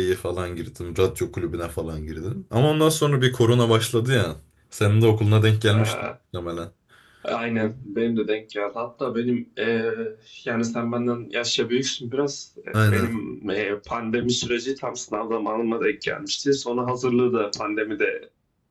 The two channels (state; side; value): identical; both; correlation 1.00